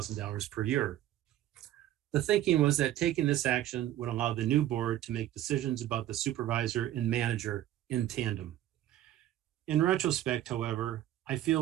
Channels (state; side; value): quieter; left; 13.2 dB